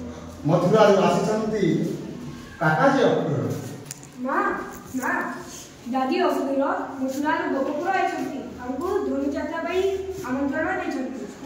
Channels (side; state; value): both; identical; correlation 1.00